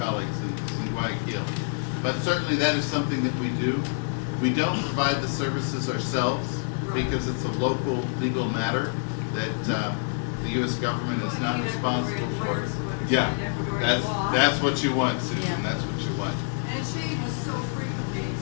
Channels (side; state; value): right; silent; digital silence